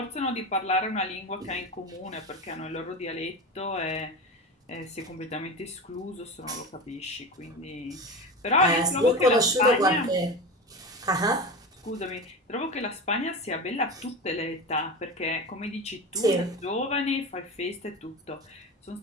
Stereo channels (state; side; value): normal; both; correlation 0.26